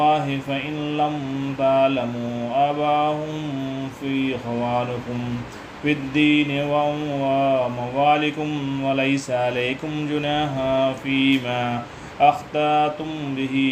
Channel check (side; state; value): both; identical; correlation 1.00